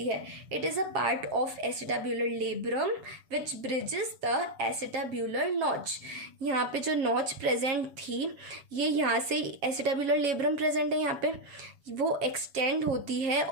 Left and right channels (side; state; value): left; late; 7.1 ms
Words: है। It is a part of acetabular labrum which bridges the acetabular notch. यहाँ पे जो नॉच प्रेजेंट थी, ये यहाँ से एसिटाब्यूलर लेब्रम प्रेजेंट है, यहाँ पे वो एक्सटेंड होती है